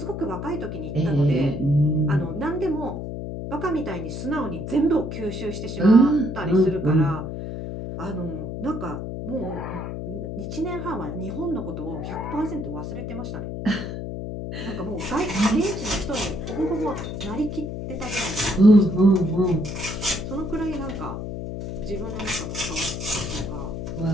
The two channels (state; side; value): noise; left; hum, 6 dB below the sound